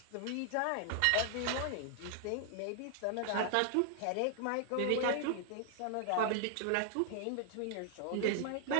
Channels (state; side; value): different; both; correlation 0.00